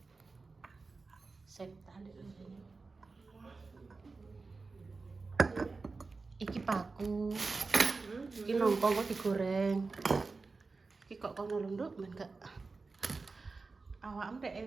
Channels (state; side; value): quieter; left; 4.0 dB